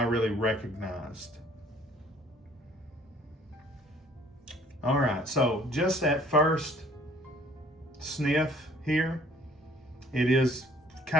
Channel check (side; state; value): both; normal; correlation 0.57